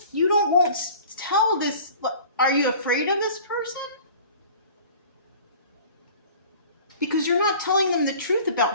won't tell this. Are you afraid of this person? Because you're not telling them the truth about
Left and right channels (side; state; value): both; inverted; correlation -0.45